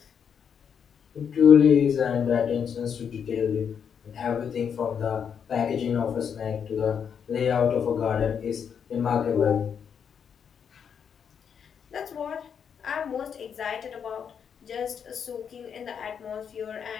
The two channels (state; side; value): quieter; right; 7.4 dB